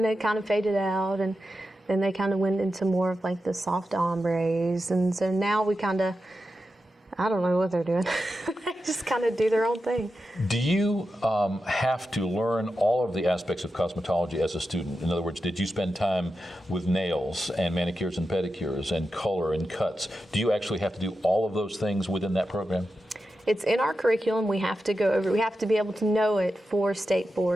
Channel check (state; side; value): normal; both; correlation 0.90